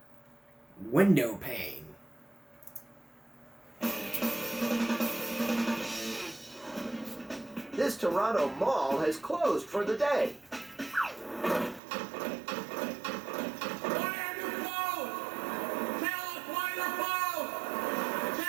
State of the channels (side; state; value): left; drops out; at 11.8 s